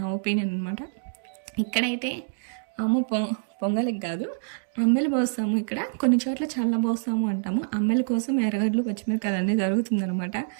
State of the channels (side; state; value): left; silent; digital silence